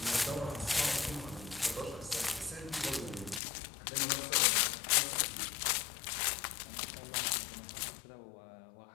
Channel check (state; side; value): drops out; right; at 3.4 s